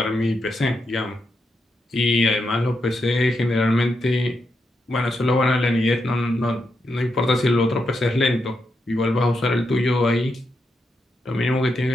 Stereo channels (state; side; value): normal; both; correlation 0.83